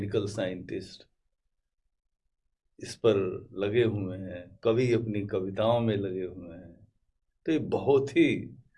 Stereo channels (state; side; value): identical; both; correlation 1.00